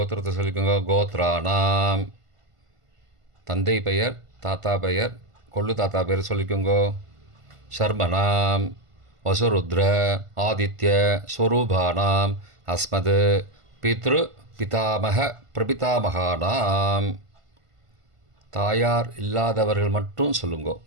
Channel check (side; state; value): left; late; 1.5 ms